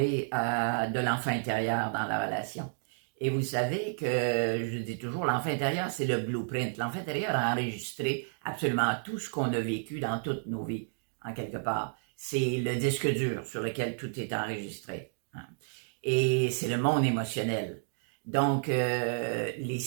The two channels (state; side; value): silent; left; digital silence